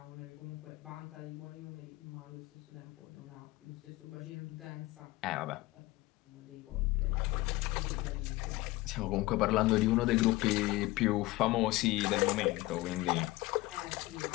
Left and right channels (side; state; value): right; quieter; 19.6 dB